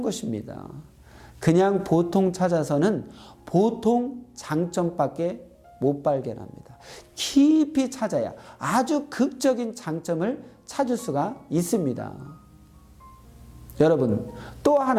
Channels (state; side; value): identical; both; correlation 1.00